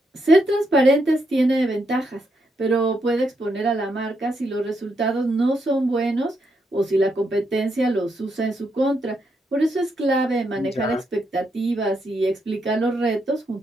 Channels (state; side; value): normal; both; correlation 0.80